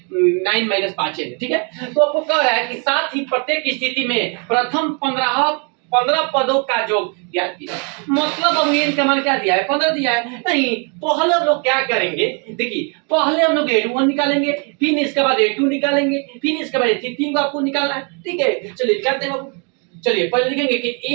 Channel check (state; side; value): quieter; left; 36.6 dB